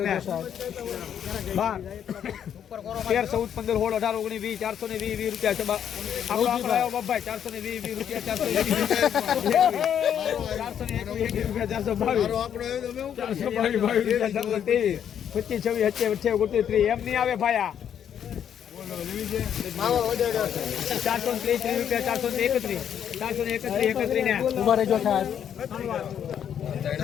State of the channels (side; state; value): right; quieter; 9.0 dB